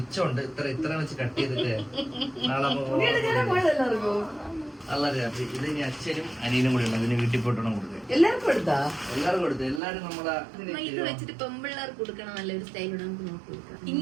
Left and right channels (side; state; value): left; drops out; at 9.8 s